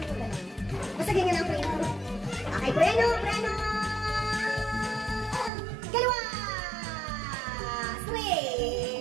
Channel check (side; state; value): left; drops out; at 5.5 s